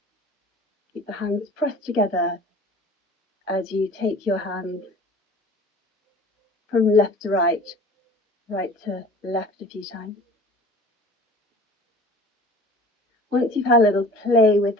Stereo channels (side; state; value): both; normal; correlation 0.44